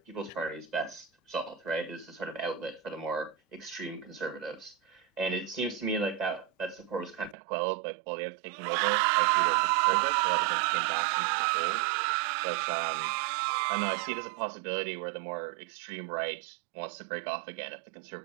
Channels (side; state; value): left; drops out; at 7.4 s